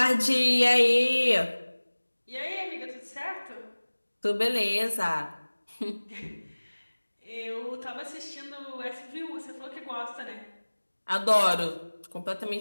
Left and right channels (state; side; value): inverted; both; correlation -1.00